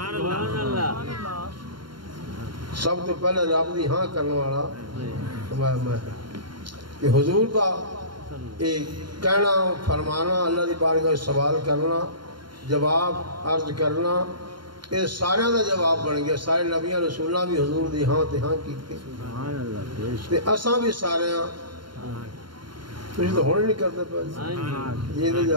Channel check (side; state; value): left; late; 0.72 ms